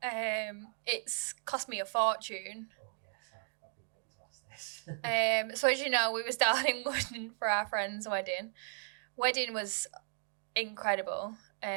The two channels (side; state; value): left; silent; digital silence